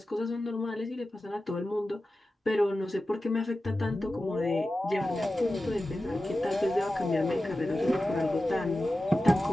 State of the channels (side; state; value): both; normal; correlation 0.94